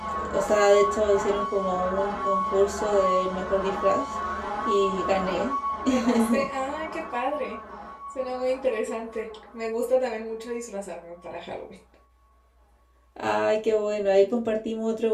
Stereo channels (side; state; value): both; identical; correlation 1.00